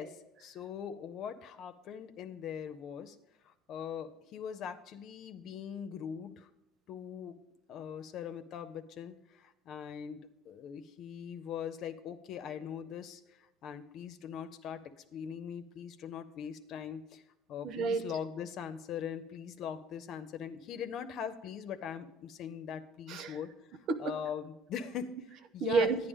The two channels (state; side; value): normal; both; correlation 0.52